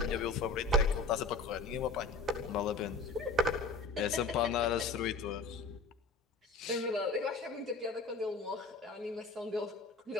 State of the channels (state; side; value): quieter; right; 3.5 dB